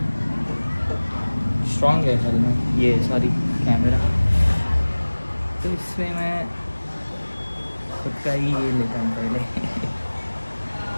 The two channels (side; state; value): both; inverted; correlation -1.00